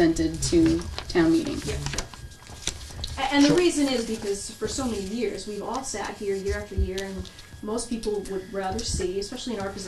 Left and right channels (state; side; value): identical; both; correlation 1.00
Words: to town meeting. Yeah. And the reason is because for so many years, we've all sat here year after year, and most people would rather see, especially in our